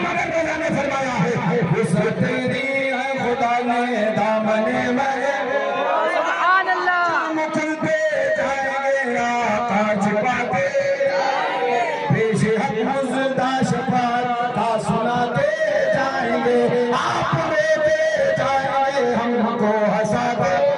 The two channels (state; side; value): identical; both; correlation 1.00